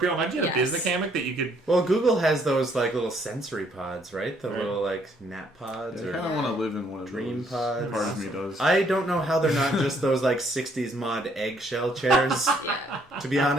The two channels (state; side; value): normal; both; correlation 0.67